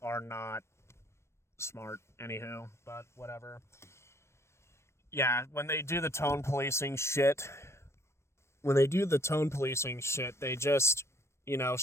are not smart. Anywho, but whatever. Yeah, when they do the tone policing shit, they just,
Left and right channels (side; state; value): right; late; 0.13 ms